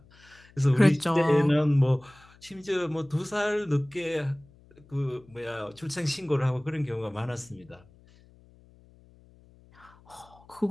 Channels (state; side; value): noise; left; hum, 27 dB below the sound